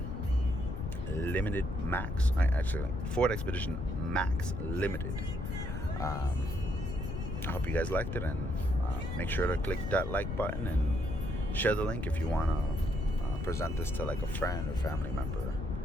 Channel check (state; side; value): noise; left; rumble, 4 dB below the sound